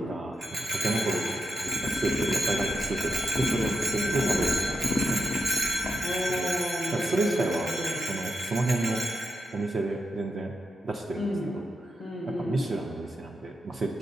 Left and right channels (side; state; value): both; normal; correlation 0.86